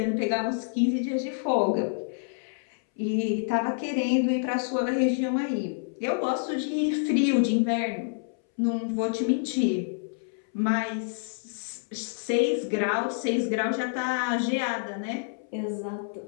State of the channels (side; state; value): right; silent; 60 dB below the other